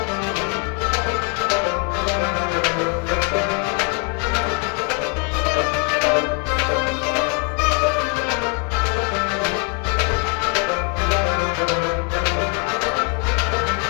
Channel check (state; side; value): quieter; right; 32.9 dB